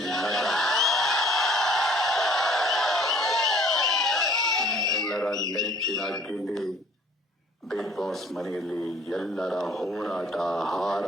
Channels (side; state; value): both; normal; correlation 0.56